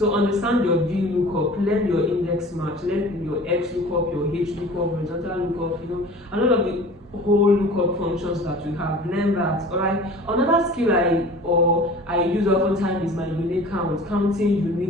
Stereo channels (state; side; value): normal; both; correlation 0.42